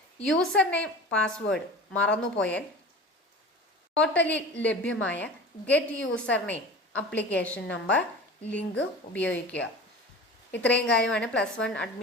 യൂസർ നെയിം, പാസ്വേഡ് മറന്നുപോയാൽ പോർട്ടലിൽ ലഭ്യമായ get user name, application number link ഉപയോഗിക്കുക. ഇത്രയും കാര്യമാണ് +1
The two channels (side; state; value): both; normal; correlation 0.36